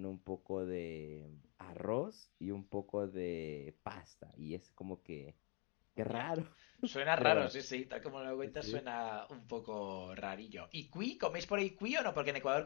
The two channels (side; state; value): right; quieter; 34.2 dB